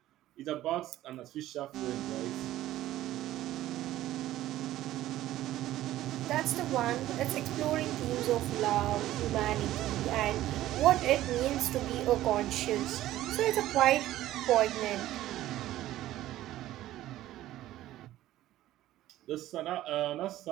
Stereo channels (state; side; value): quieter; left; 14.5 dB